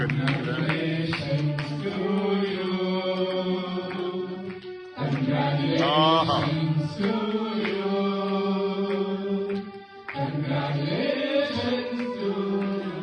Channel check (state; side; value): identical; both; correlation 1.00